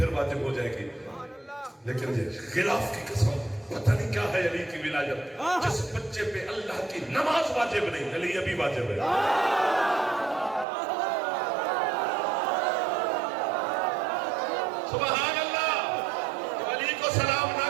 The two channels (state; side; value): drops out; left; at 10.7 s